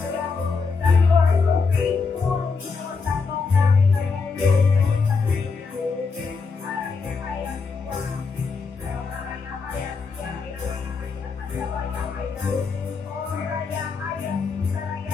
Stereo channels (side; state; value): right; quieter; 4.8 dB